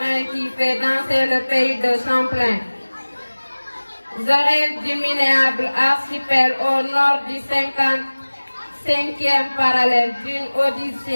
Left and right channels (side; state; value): both; inverted; correlation -1.00